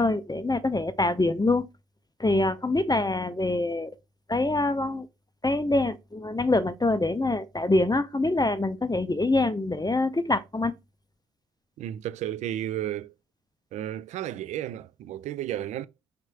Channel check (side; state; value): both; normal; correlation 0.74